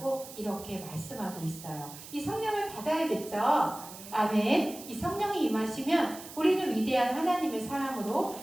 이렇게 말씀하고 있어요. 이 성령을 받아야겠죠? 아멘. 이 성령이 임하시면 우리는 위대한 하나님의 사람으로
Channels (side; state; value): right; noise; hiss, 14 dB below the sound